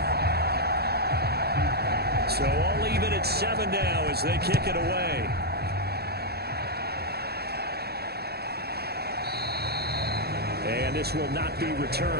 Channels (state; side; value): late; left; 0.46 ms